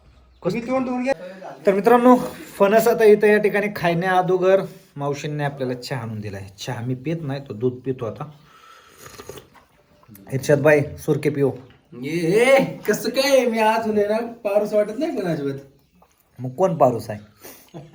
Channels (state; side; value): identical; both; correlation 1.00